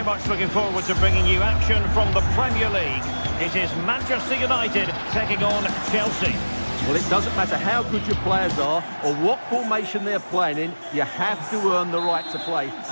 much looking forward to bringing you action from the Premier League. It is Manchester United taking on Chelsea. Well, it doesn't matter how good your players are or what formation they're playing in, you have to earn the right to play.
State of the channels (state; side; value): inverted; both; correlation -1.00